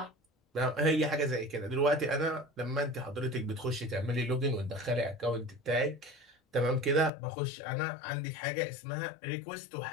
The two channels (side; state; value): right; drops out; at 7.1 s